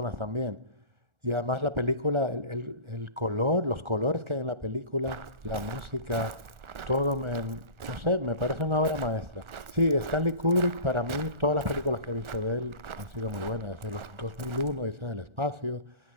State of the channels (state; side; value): late; left; 1.4 ms